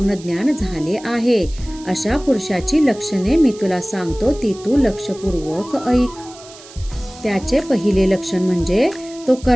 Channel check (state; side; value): noise; right; hiss, 20 dB below the sound